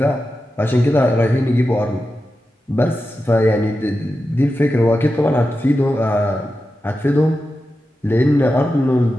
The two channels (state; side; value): normal; both; correlation 0.91